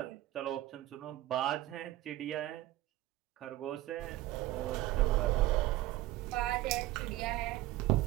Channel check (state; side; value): quieter; left; 16.0 dB